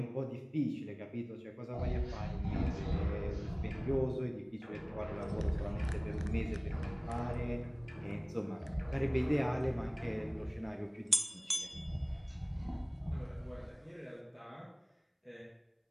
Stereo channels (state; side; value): identical; both; correlation 1.00